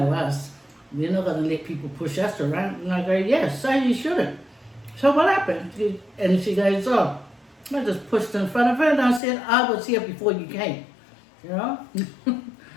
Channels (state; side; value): drops out; right; at 9.2 s